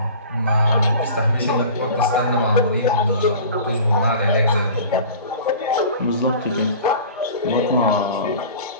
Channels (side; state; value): both; inverted; correlation -0.40